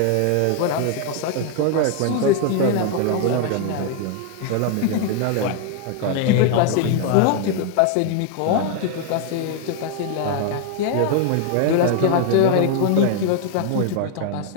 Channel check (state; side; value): different; both; correlation 0.00